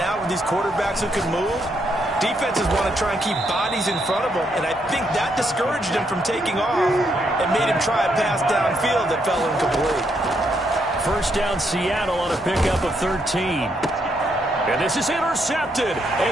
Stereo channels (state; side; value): normal; both; correlation 0.76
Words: with these quarterbacks who can move, defenses want to try and keep bodies in front of them, and I think that discouraged him from taking off and made him try a pass downfield that fell incomplete. First down Seattle on a pickup of 13. And this is intercepted,